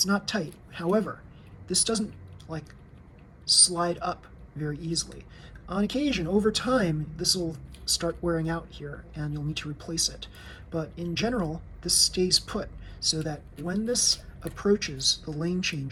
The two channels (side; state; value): both; identical; correlation 1.00